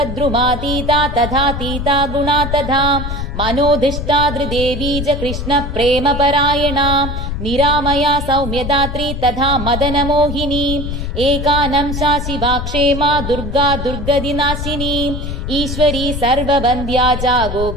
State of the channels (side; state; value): left; noise; rumble, 5 dB below the sound